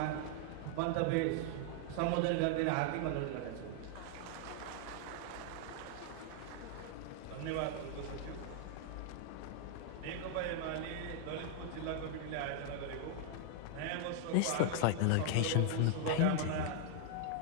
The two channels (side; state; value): both; different; correlation 0.00